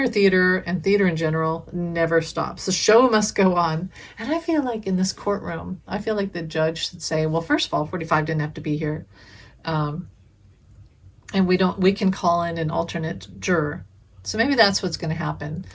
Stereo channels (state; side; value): identical; both; correlation 1.00